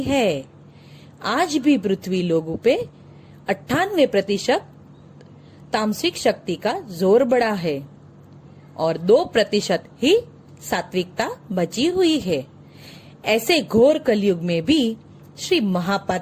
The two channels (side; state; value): both; identical; correlation 1.00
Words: है। आज भी पृथ्वी लोगों पे 98% तामसिक शक्ति का जोर बढ़ा है और 2% ही सात्विकता बची हुई है। ऐसे घोर कलयुग में भी श्री